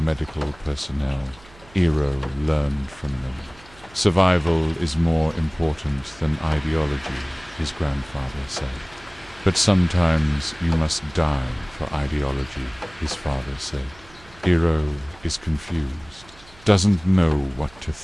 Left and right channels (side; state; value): right; noise; hum, 24 dB below the sound